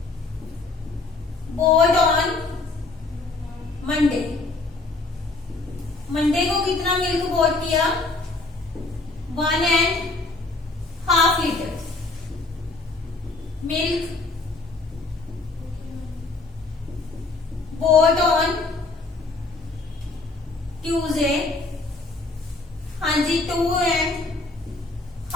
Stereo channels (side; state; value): right; quieter; 3.4 dB